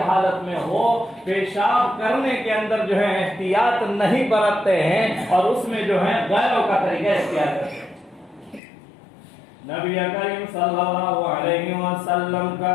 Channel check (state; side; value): drops out; right; at 8.6 s